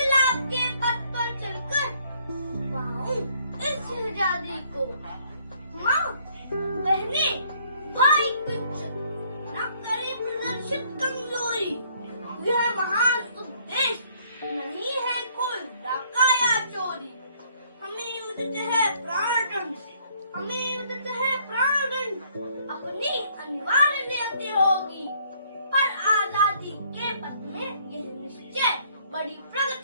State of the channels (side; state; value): both; inverted; correlation -0.64